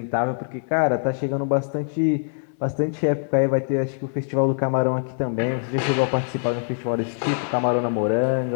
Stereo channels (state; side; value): silent; right; digital silence